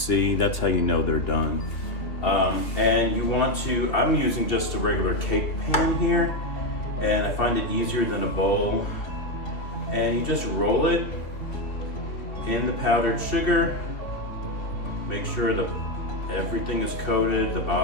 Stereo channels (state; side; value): late; right; 2.4 ms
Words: That's how you know they're done. And you want to, I'm using just a regular cake pan here, and I find it easier than a bowl. And you just roll it in the powdered sugar. Make sure everything is coated, the